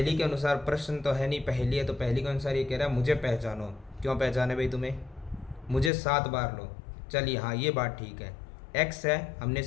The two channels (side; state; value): right; drops out; at 5.9 s